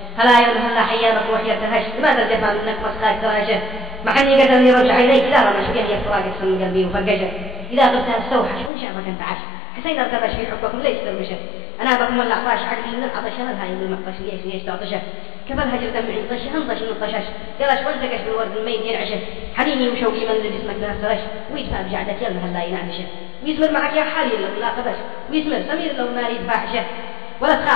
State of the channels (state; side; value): drops out; right; at 8.7 s